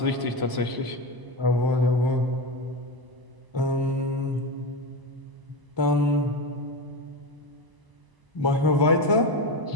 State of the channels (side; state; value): left; late; 1.0 ms